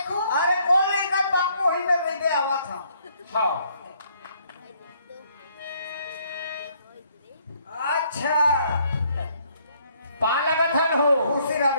अरे कौन लेकर बापू वही में बैठे आवा था। हाँ अच्छा पा लगा था हो। खुशी रहा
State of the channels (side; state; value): both; inverted; correlation -0.67